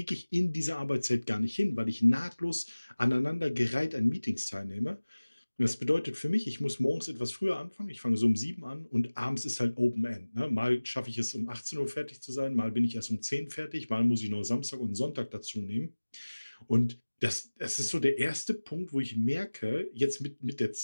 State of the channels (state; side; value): inverted; both; correlation -1.00